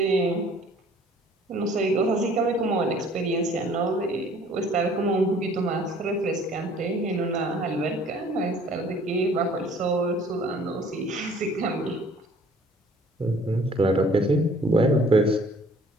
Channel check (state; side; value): normal; both; correlation 0.54